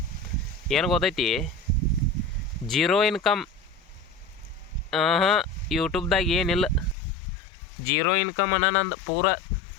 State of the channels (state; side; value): drops out; right; at 7.0 s